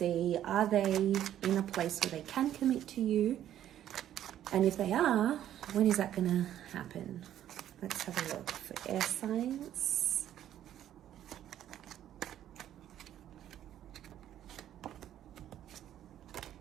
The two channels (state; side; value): quieter; left; 11.4 dB